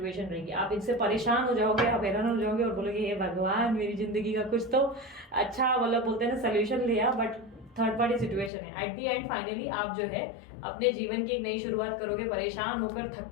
रहेगी। आप इनसे परेशान हो जाओगे, आप हैरान हो जाओगे और बोलोगे हे भगवान मेरी जिंदगी का कुछ तो अच्छा मतलब बोलते हैं ना सोल्यूशन लिया, बट थर्ड पार्टी सिचुएशन है। एट दी एंड फाइनली आप जो है अपने जीवन की एक नई शुरुआत करोगे, परेशान होकर, थक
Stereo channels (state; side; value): drops out; right; at 8.5 s